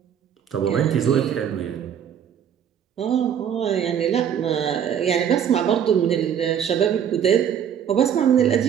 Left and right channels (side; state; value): left; quieter; 8.8 dB